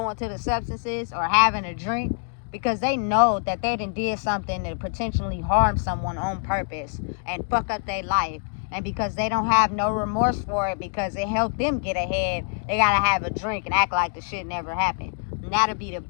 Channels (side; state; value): right; silent; digital silence